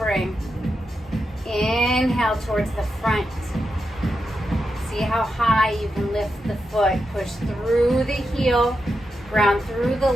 Inhale towards the front. See how high you can lift the foot. Push through the heel, ground through the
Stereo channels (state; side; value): normal; both; correlation 0.87